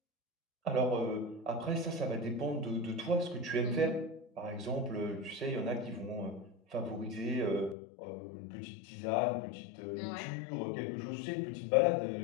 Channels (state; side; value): drops out; right; at 7.8 s